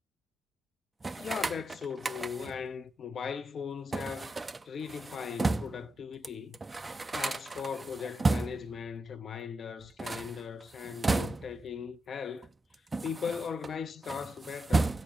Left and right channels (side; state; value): both; normal; correlation 0.86